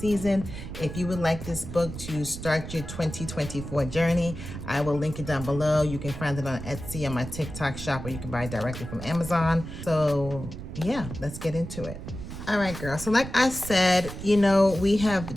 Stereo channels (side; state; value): right; noise; rumble, 9 dB below the sound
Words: If you would like this book to start your 2024 journey, I will link it down below. You can find it on Etsy, on my TikTok shop, or you can buy it directly from Amazon. So yeah, let's get into it. All right, girl. So like I said, you know, we